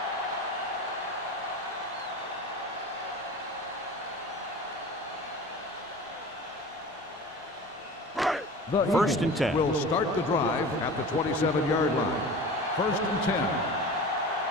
The 1st and 10. Will start the drive at the 27-yard line. 1st and 10.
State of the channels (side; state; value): both; normal; correlation 0.36